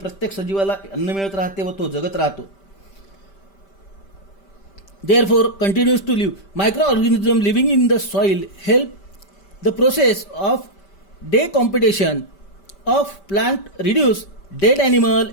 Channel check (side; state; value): right; late; 5.1 ms